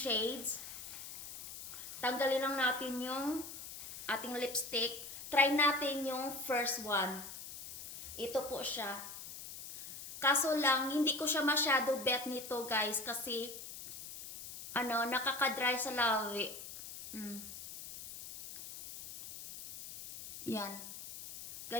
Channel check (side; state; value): left; noise; hiss, 11 dB below the sound